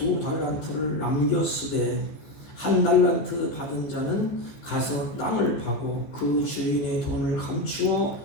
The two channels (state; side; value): late; right; 14 ms